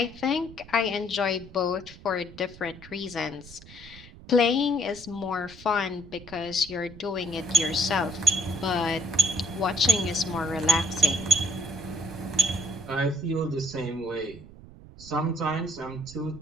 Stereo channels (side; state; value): right; noise; rumble, 18 dB below the sound